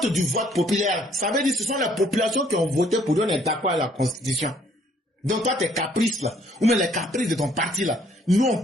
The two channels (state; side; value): normal; both; correlation 0.63